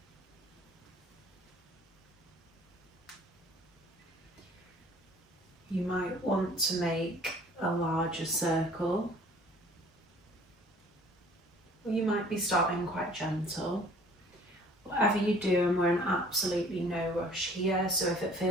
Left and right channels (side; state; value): both; normal; correlation 0.52